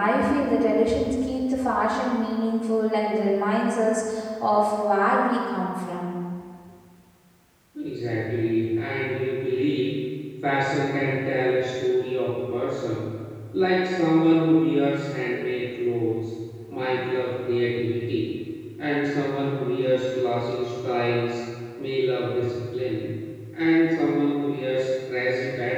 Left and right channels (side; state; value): both; identical; correlation 1.00